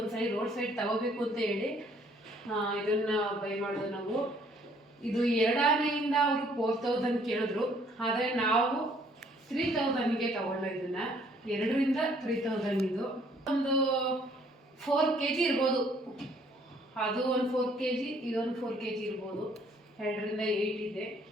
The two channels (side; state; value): both; normal; correlation 0.62